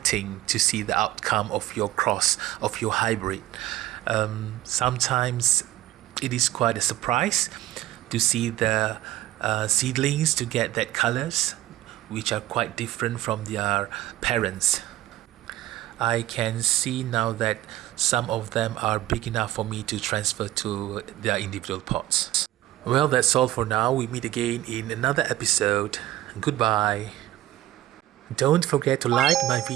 to see the outcome of your cross, of your hybrid. Sometimes it is quite a surprise to see the seedlings to get that colors, which are quite different from their parents. I can see now that some of them are big enough for me to transfer to their individual pots. Well, that's all for now. We meet again in another episode. Goodbye. Don't forget to like my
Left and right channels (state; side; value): quieter; left; 15.0 dB